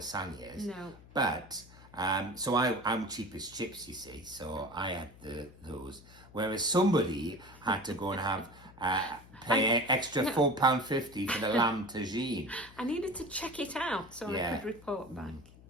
No. But so I'm cheap as chips, you see. So I had those, whereas somebody had to go and have pay extra £4.50 for the lamb tagine. I needed to check it out so I could report back.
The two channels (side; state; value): left; noise; hum, 21 dB below the sound